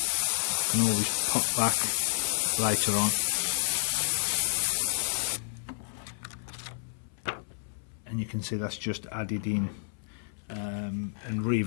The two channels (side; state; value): right; silent; 58 dB below the other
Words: I can always pop back later on, and you can see that's just added in and